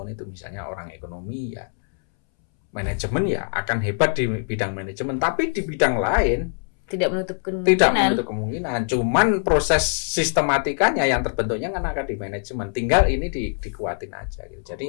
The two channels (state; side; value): silent; right; 63 dB below the other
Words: itu. Misalnya orang ekonomi ya manajemen ya akan hebat di bidang manajemen, tapi di bidang lain tidak menutup kemungkinan. Cuman proses sistematikanya yang terbentuknya kan akan di manajemen. Tinggal ini dikuatin aja gitu.